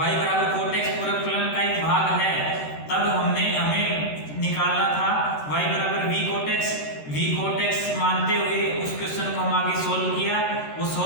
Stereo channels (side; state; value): right; late; 13 ms